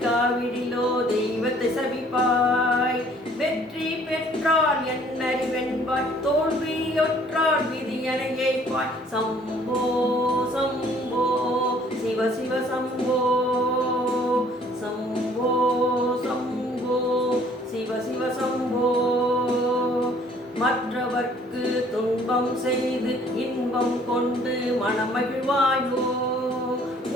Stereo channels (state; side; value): normal; both; correlation 0.58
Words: தெய்வத்தை சபிப்பாய். வெற்றி பெற்றால் என்னறிவென்பாய் தோல்வியொற்றால் விதியனை ஏய்ப்பாய். சம்போ சம்போ சிவ சிவ சம்போ, சம்போ சம்போ சிவ சிவ சம்போ. மற்றவர்க்கு துன்பம் செய்து இன்பம் கொண்டு மனமகிழ்வாயோ,